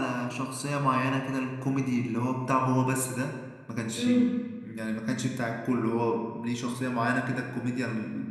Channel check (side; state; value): both; identical; correlation 1.00